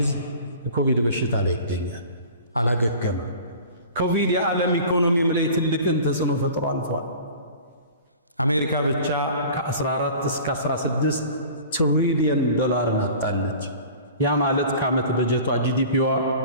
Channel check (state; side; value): inverted; both; correlation -0.42